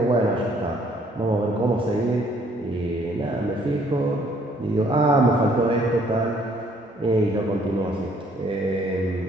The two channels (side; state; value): both; normal; correlation 0.63